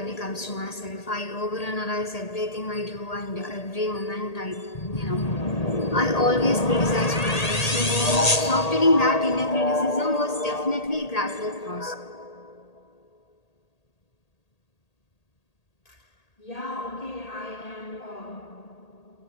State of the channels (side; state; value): right; late; 1.8 ms